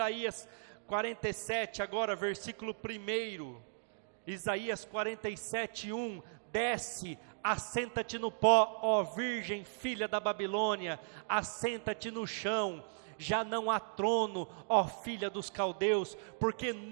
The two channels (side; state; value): left; silent; digital silence